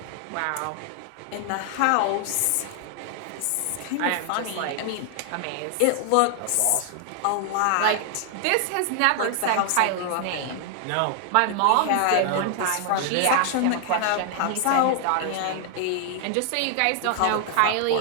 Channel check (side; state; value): both; different; correlation 0.00